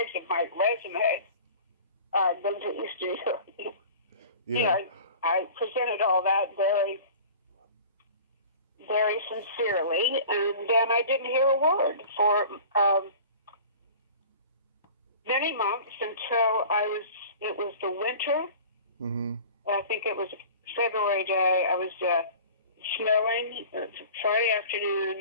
of my resume, I've been to Eastern Europe. Yeah. I presented all that very, very sincerely, and then I didn't hear a word for many months until it was the winter. I think it was a February day. I was snowing, Friday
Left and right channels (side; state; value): both; inverted; correlation -0.42